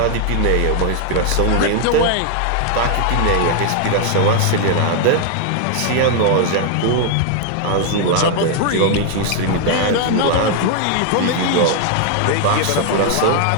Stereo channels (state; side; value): different; both; correlation 0.00